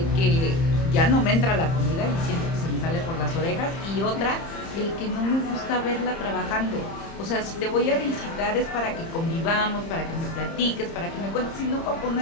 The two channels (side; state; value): right; late; 30 ms